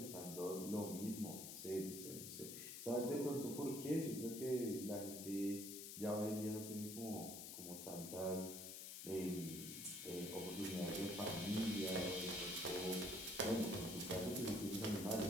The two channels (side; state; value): left; noise; hiss, 8 dB below the sound